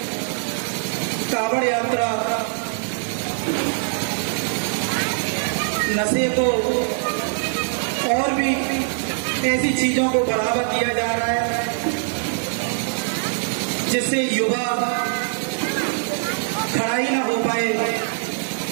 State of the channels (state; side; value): silent; left; 58 dB below the other